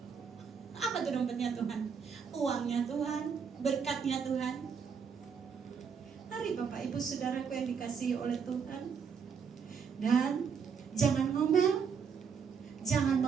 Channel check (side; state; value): left; quieter; 6.4 dB